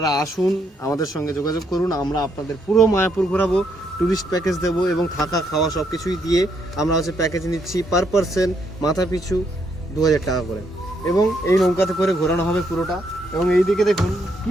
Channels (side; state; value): both; normal; correlation 0.74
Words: আসুন, আমাদের সঙ্গে যোগাযোগ করুন, আমরা আপনাদের পুরো মায়াপুর ঘোরাবো, ট্যুরিস্ট প্যাকেজ দেবো এবং থাকা খাওয়া সব কিছুই দিয়ে আমরা প্যাকেজ নিচ্ছি পার পারসন মাথা পিছু 2000 টাকা করে। এবং এই নৌকাতে করে ঘোরানো হবে পুরোটা। এবং এই দিকে দেখুন